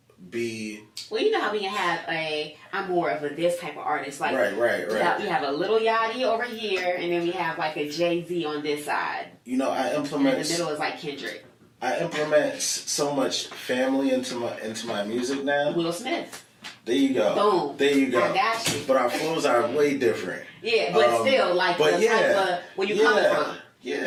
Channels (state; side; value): identical; both; correlation 1.00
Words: be. Well, you know how we can have I'm more of this type of artist. Like right. We have a little Yachty over here, and then we have like a Jay-Z on this side. You know, I implement. And the middle is like Kendrick. I implement so much family into my music now. Will Smith. There you go. Boom. There you go. I got you. But our flows are way different. Yeah, but still, like the type of where you coming from.